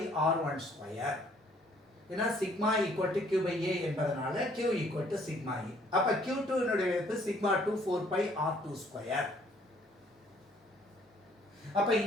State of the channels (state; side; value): normal; both; correlation 0.62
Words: ஏன்னா சிக்மா ஈக்குவல் டு Q/A என்பதனால Q equal to sigma E. அப்ப Q2 னுடைய மதிப்பு σ2 4πR22. அப்ப